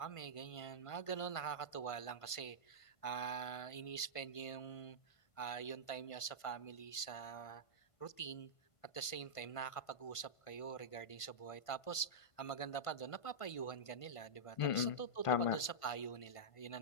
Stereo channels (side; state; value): right; late; 1.5 ms